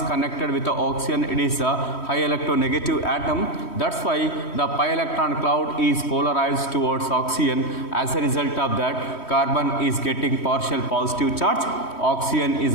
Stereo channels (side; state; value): right; late; 3.1 ms